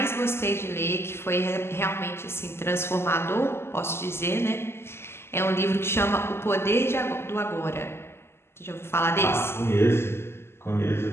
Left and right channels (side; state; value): right; late; 0.12 ms